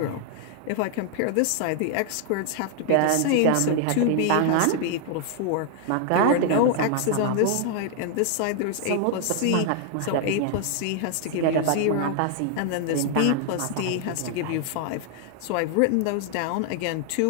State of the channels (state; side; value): different; both; correlation 0.00